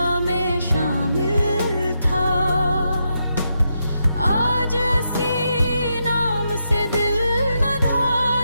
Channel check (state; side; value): inverted; both; correlation -0.83